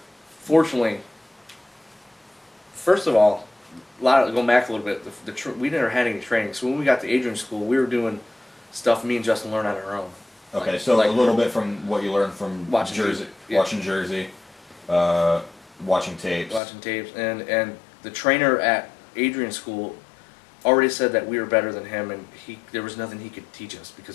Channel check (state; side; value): drops out; right; at 16.6 s